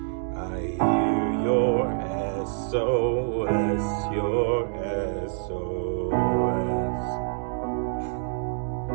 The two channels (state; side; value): silent; left; 61 dB below the other